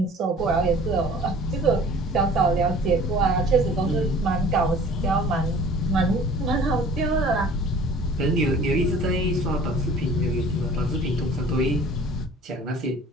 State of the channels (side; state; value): both; normal; correlation 0.48